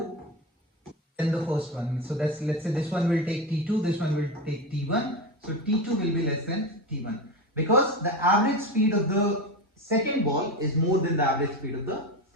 than the first one. So that's, let's say this one will take t2, this one will take t1. So t2 will be less than t1, because the average speed of the second ball is more than the average speed of the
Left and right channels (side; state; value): both; normal; correlation 0.19